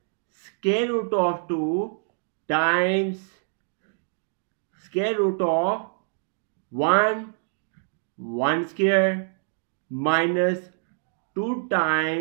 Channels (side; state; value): left; silent; digital silence